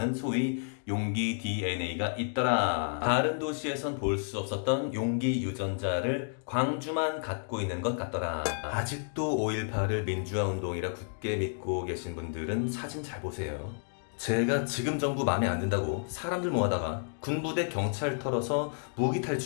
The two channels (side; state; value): right; silent; digital silence